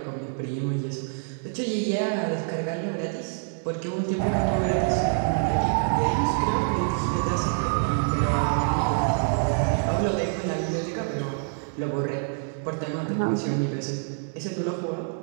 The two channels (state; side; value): silent; left; 61 dB below the other